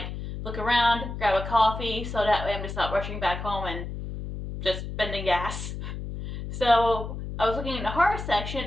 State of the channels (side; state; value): left; noise; hum, 7 dB below the sound